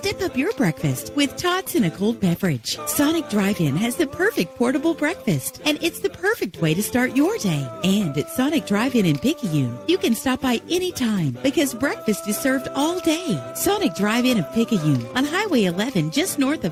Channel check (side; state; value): both; identical; correlation 1.00